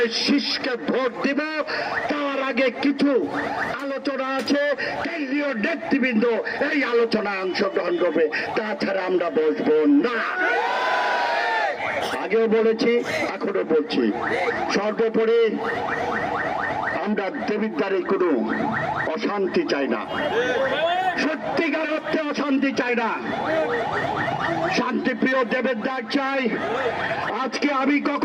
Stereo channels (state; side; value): identical; both; correlation 1.00